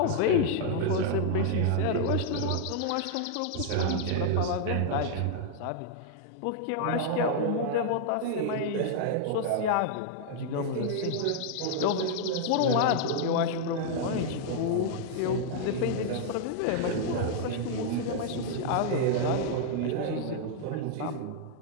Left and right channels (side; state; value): both; different; correlation -0.01